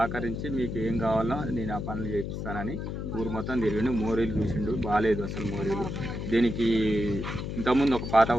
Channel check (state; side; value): noise; left; hum, 5 dB below the sound